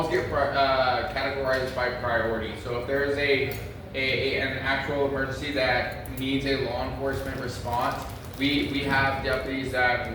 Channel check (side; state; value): both; identical; correlation 1.00